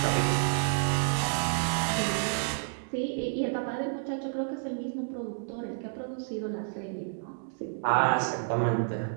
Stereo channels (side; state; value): left; silent; digital silence